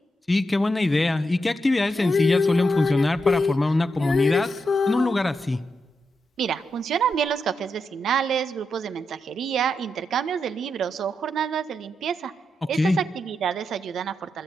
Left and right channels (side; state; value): both; normal; correlation 0.85